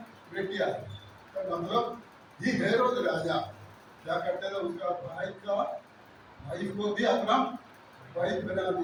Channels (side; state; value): both; identical; correlation 1.00